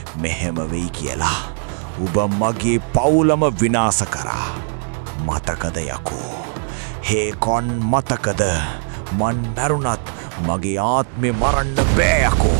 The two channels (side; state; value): left; silent; 66 dB below the other